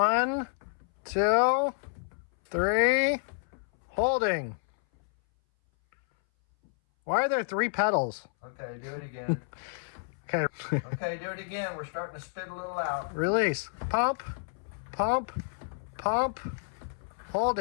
2, 3, holding. Why are there 3 pedals? Okay, do it again. Okay. Okay, do it again. We're starting to spit a little out. Release. Pump, pump, pump,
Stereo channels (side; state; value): right; silent; 58 dB below the other